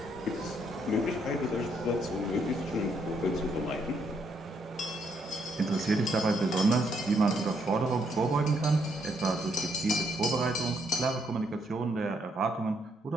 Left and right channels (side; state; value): both; normal; correlation 0.73